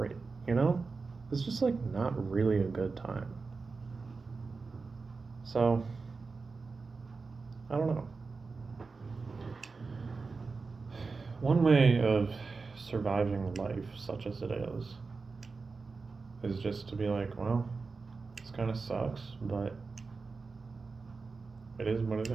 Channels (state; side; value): quieter; left; 4.3 dB